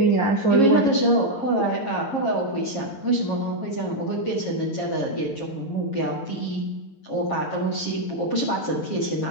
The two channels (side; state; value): right; late; 7.4 ms